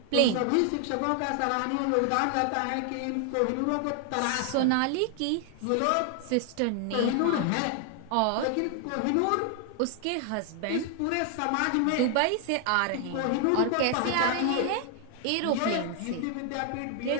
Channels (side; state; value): both; different; correlation 0.00